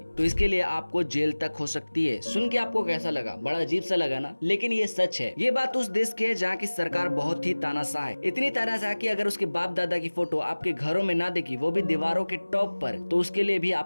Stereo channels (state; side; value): inverted; both; correlation -1.00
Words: तो इसके लिए आपको जेल तक हो सकती है। सुन के आपको कैसा लगा? बड़ा अजीब सा लगा ना, लेकिन ये सच है। ये बात उस देश की है जहाँ की सरकार बहुत ही तानाशाह है, इतनी तानाशाह कि अगर उसके बाप दादा की फोटो आपके घरों में ना दिखी, वो भी दीवारों के टॉप पर, तो उसके लिए भी